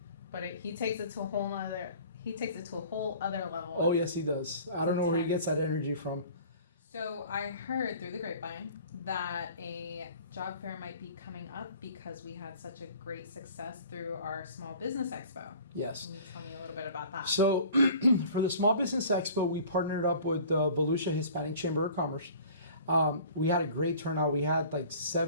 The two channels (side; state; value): both; inverted; correlation -0.47